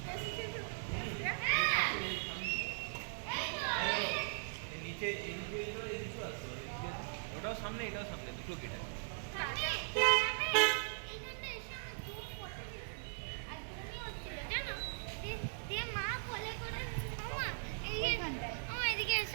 নিচে ওটাও সামনে এটাও সামনে দুটো গেট আছে মা কোলে করে মামা এদিকে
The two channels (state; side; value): silent; left; digital silence